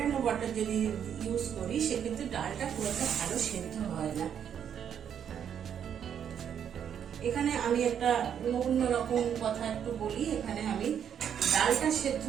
ওয়াটার যদি ইউজ করি সেক্ষেত্রে ডালটা খুব একটা ভালো সেদ্ধ হয় না। এখানে আমি একটা অন্যরকম কথা একটু বলি। এখানে আমি ডালটা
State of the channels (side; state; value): left; quieter; 8.6 dB